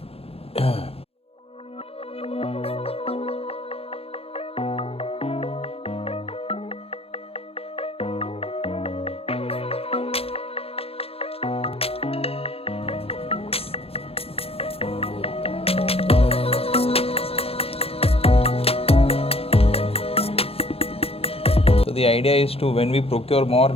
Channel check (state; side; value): late; right; 0.28 ms